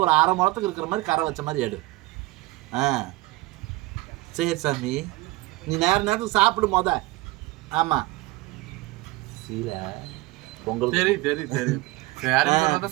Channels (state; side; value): quieter; left; 19.9 dB